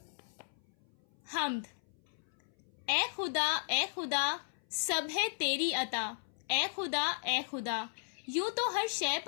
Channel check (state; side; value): silent; right; 54 dB below the other